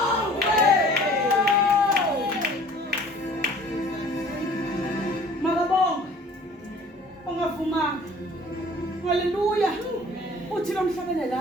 Makabongwe. Ongavumanga. Haleluya. Uthi lo mhlabene la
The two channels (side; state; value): both; normal; correlation 0.50